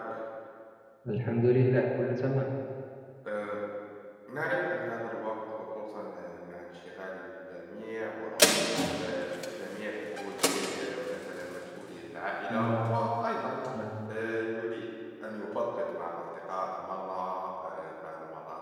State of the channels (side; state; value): both; identical; correlation 1.00